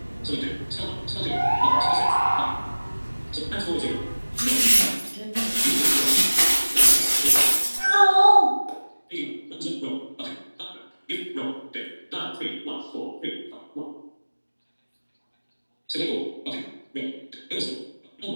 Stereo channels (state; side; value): inverted; both; correlation -1.00